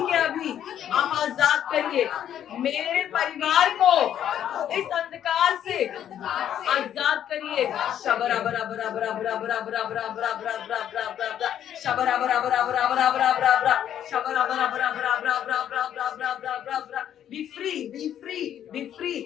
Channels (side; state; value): right; quieter; 10.3 dB